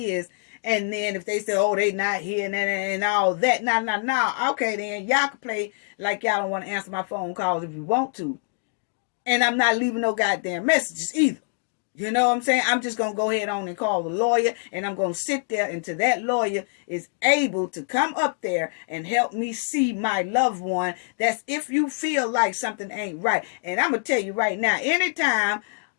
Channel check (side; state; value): right; silent; digital silence